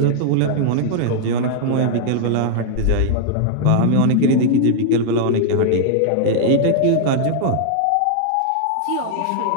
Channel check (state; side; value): different; both; correlation -0.01